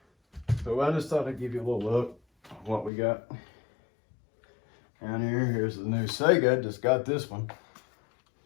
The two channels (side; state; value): right; drops out; at 2.9 s